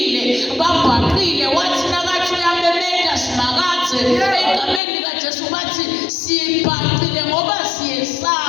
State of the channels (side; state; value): right; drops out; at 4.8 s